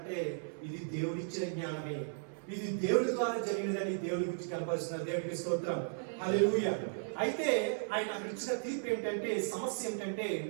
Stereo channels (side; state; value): left; silent; 54 dB below the other